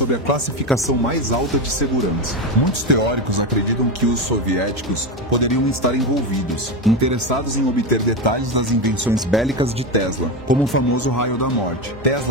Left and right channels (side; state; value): both; normal; correlation 0.15